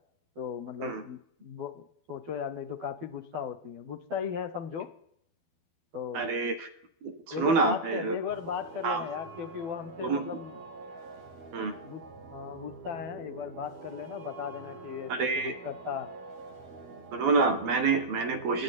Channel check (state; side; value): late; left; 12 ms